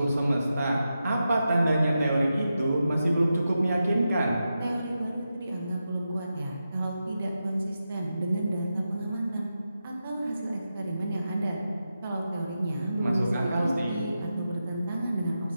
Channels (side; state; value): both; inverted; correlation -0.89